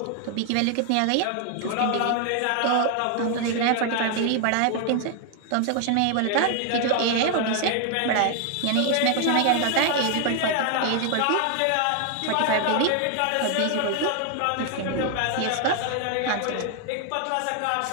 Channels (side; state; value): both; different; correlation 0.00